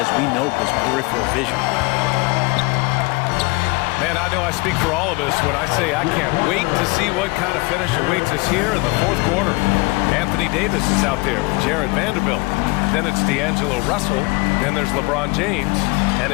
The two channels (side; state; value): right; quieter; 25.8 dB